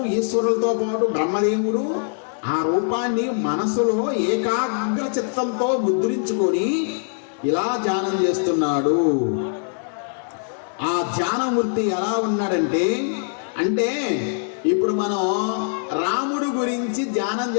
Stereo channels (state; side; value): silent; right; 64 dB below the other